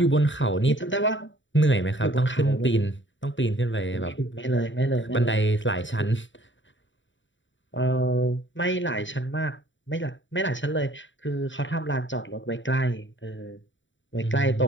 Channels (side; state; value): right; late; 0.55 ms